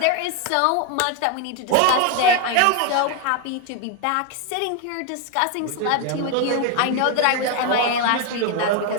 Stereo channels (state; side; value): different; both; correlation 0.01